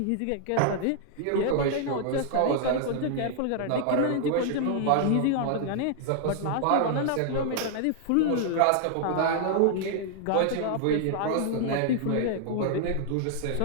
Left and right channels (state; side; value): different; both; correlation -0.01